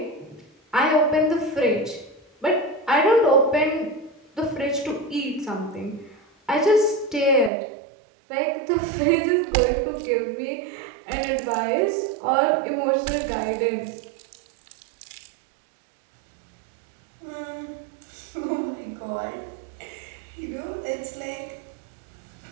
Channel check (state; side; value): drops out; left; at 7.5 s